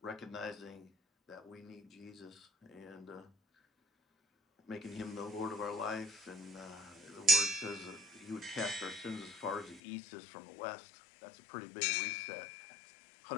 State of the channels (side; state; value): right; drops out; at 9.8 s